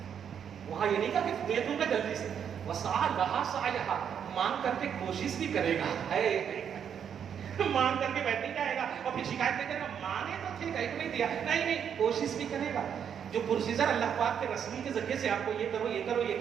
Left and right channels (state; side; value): quieter; left; 8.1 dB